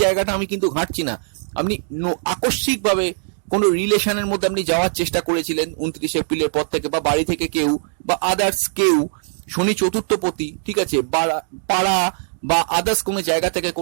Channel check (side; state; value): left; silent; digital silence